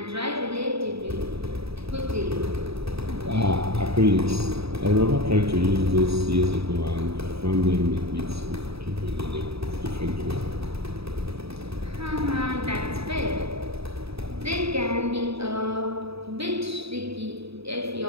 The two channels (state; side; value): late; left; 0.78 ms